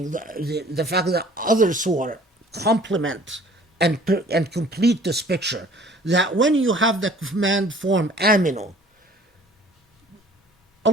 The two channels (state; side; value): normal; both; correlation 0.52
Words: the fact that other surah complement and complete this picture, that when you have the command form aminu,